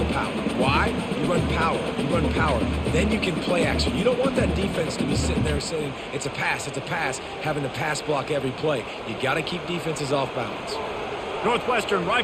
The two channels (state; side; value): identical; both; correlation 1.00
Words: power. Why? You run power. You run power. Then you can play action. You don't want that defense to be sitting there saying, it's a pass, having to pass block every play. You got to keep defenses off balance. Northwestern